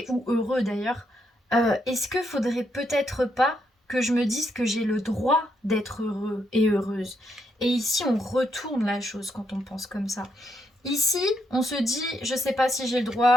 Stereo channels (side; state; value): both; normal; correlation 0.78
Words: ou heureux d'ailleurs, est-ce que faudrait peut-être pas que je me dise que j'ai le droit d'être heureux et heureuse? Et ici, on retourne la chose quand on pense comme ça. Ici, on se dit, je sais pas si j'ai le